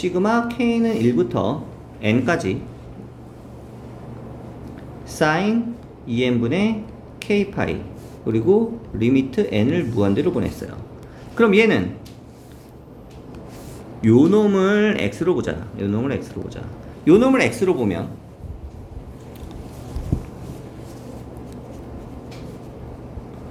k는 1부터 n까지 sin 2n분의 k파이 그리고 리미트 n을 무한대로 보냈어요. 그럼 얘는 요 놈을 x로 보자. 요 놈을 x로 보면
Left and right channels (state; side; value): identical; both; correlation 1.00